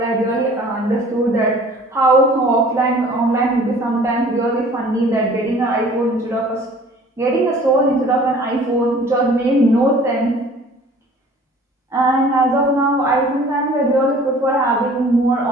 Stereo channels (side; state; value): both; normal; correlation 0.50